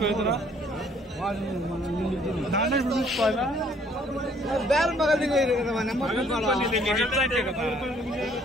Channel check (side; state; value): both; normal; correlation 0.61